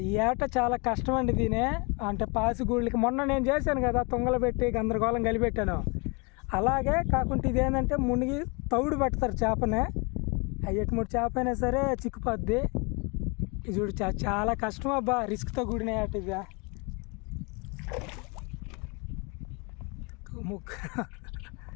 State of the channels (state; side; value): quieter; right; 30.7 dB